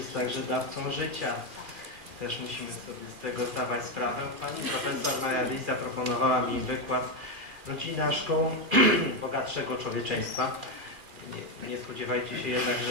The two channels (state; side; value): late; left; 2.4 ms